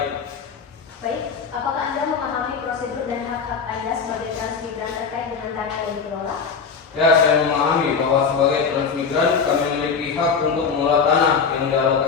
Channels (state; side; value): quieter; right; 5.8 dB